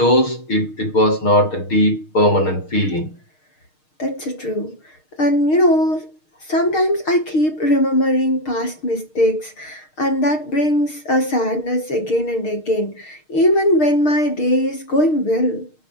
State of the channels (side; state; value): right; late; 6.5 ms